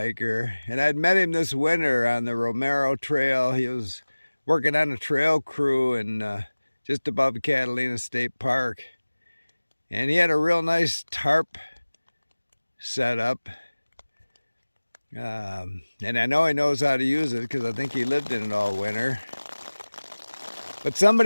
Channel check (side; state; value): both; inverted; correlation -1.00